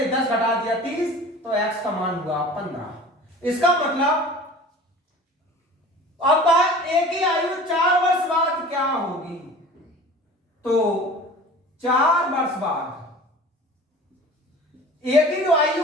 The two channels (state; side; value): normal; both; correlation 0.41